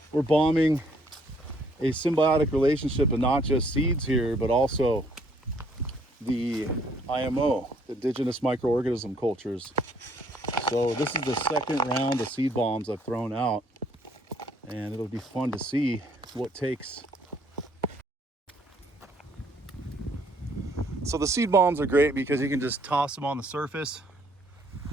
We're bombing a symbiotic relationship of not just seeds here, but also the IMO, the indigenous microorganism cultures. So this is the second round of seed bombs I've thrown out, and it'll be fun to see what takes. So the seed bombs are great because you can just toss them on the surface.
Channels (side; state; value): both; normal; correlation 0.65